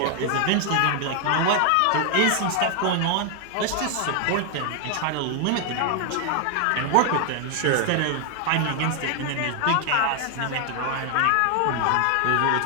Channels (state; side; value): different; both; correlation 0.00